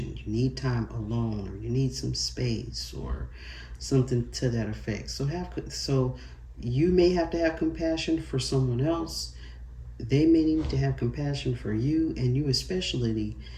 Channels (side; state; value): both; identical; correlation 1.00